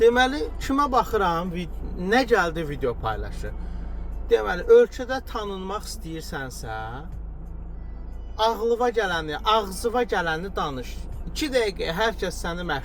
kimə baxıram, nə gəldi video paylaşır. Deməli, ölkədə tanınmaq istəyirsənsə, ağlıva gələni, ağzıva gələni danış. 2 dəqiqə hər kəs səni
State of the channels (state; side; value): identical; both; correlation 1.00